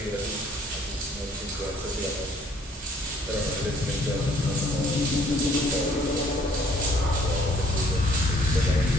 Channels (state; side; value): normal; both; correlation 0.61